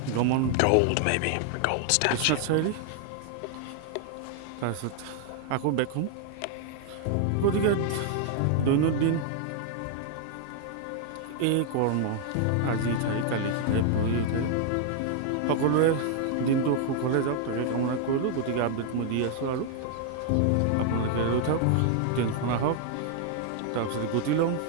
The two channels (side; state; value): both; different; correlation 0.00